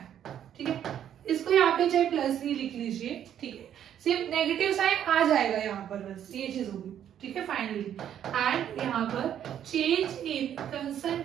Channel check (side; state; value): left; quieter; 10.0 dB